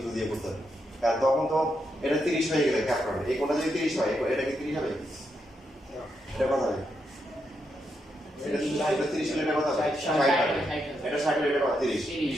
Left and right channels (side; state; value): both; normal; correlation 0.82